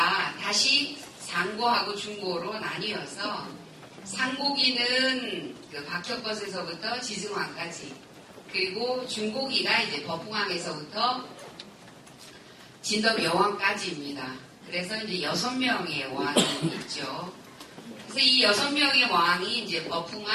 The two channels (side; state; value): both; identical; correlation 1.00